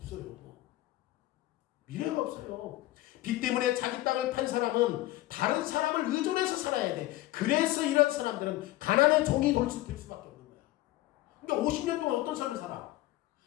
미래가 없어요. 빚 때문에 자기 땅을 판 사람은 다른 사람을 의존해서 살아야 돼. 그래서 이런 사람들은 가난의 종이 될 수밖에 없는 거야. 그러니까 50년 동안 어떤 삶을 살아?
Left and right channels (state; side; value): quieter; right; 17.0 dB